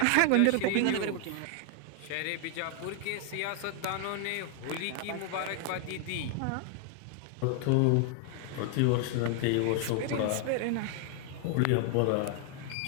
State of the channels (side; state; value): both; different; correlation 0.00